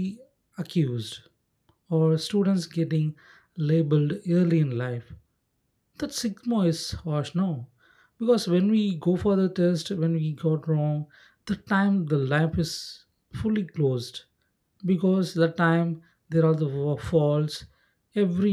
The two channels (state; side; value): identical; both; correlation 1.00